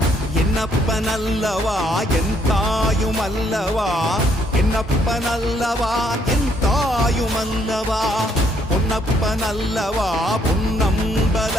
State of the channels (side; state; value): both; normal; correlation 0.69